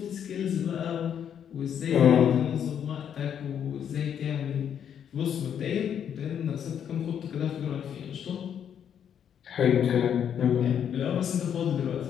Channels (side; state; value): right; quieter; 8.7 dB